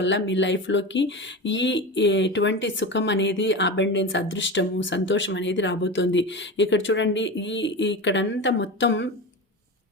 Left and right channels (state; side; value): normal; both; correlation 0.25